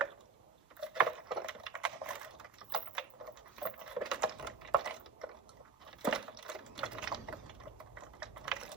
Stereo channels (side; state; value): left; quieter; 4.7 dB